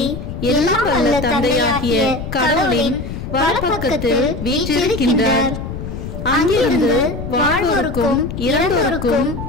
எல்லாம் வல்ல தந்தையாகிய கடவுளின் வலப்பக்கத்தில் வீற்றிருக்கின்றார். அங்கிருந்து வாழ்வோருக்கும் இறந்தோருக்கும்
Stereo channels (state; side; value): noise; left; rumble, 7 dB below the sound